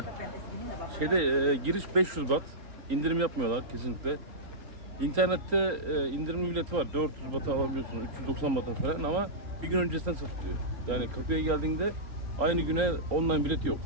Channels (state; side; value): late; left; 3.9 ms